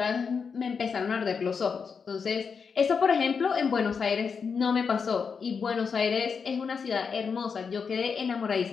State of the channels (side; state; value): right; quieter; 5.8 dB